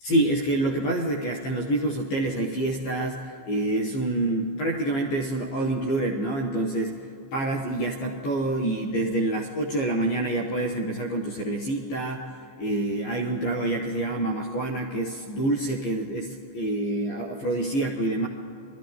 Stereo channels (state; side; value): late; right; 15 ms